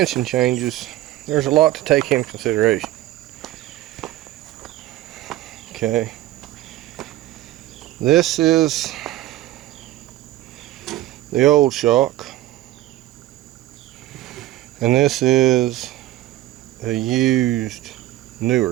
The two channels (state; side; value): quieter; left; 15.4 dB